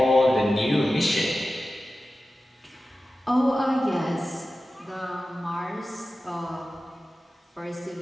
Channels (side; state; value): both; normal; correlation 0.94